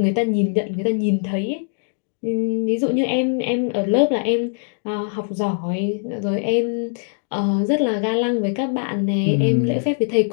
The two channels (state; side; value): silent; right; digital silence